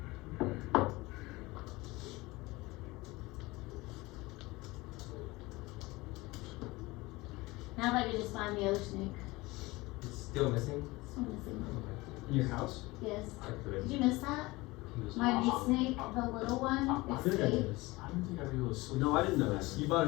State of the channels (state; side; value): quieter; right; 21.6 dB